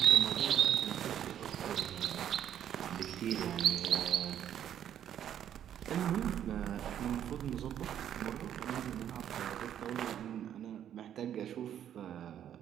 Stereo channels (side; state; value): left; quieter; 10.2 dB